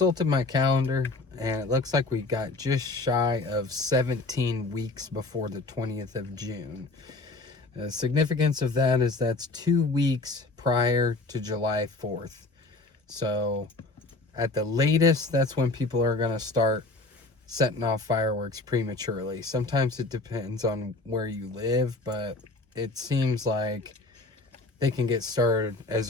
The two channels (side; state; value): right; quieter; 3.3 dB